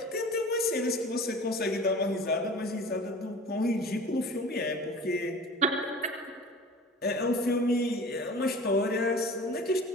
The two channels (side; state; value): both; normal; correlation 0.40